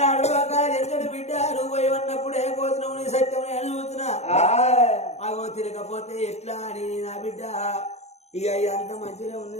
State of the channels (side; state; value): right; late; 0.32 ms